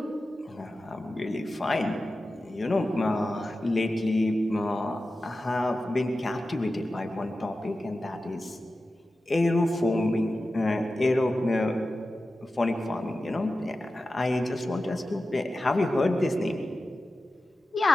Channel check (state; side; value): normal; both; correlation 0.93